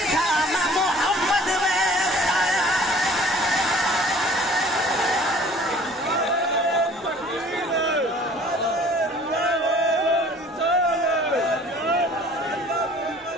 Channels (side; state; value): both; normal; correlation 0.51